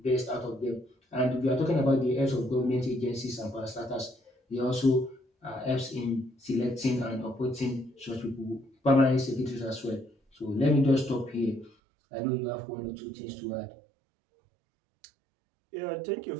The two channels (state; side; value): drops out; left; at 11.7 s